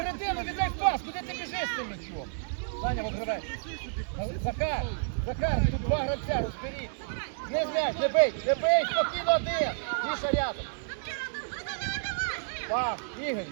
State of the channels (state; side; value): silent; left; digital silence